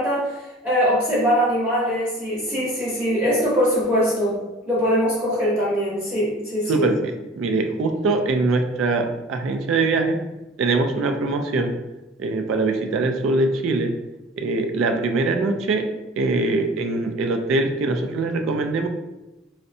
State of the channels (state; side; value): normal; both; correlation 0.43